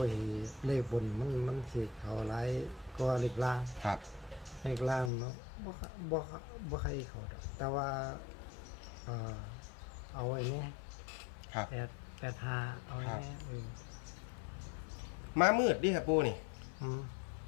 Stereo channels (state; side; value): drops out; right; at 5.1 s